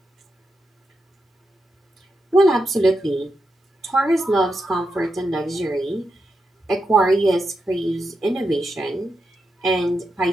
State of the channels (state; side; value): normal; both; correlation 0.86